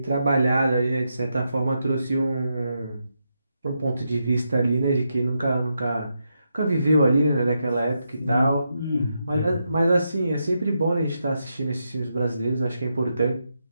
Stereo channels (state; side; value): inverted; both; correlation -0.84